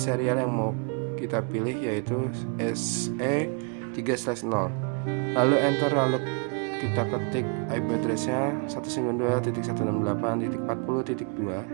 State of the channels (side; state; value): left; quieter; 35.3 dB